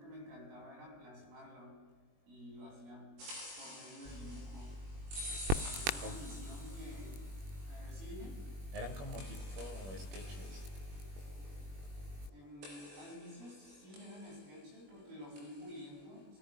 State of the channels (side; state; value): left; late; 21 ms